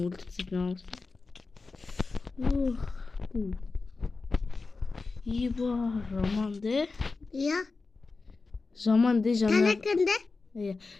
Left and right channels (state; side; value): quieter; right; 4.0 dB